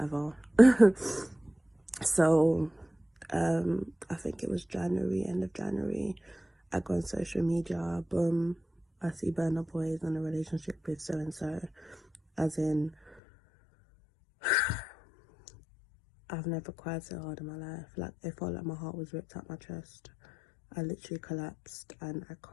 So I think it was January, end of January, I go on social media, boom, I see Burna Boy is in a relationship with so and so. As in, I've never cried so hard in my life. Like, it felt like my heart was ripped out my chest. I literally collapsed and I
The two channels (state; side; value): drops out; right; at 13.2 s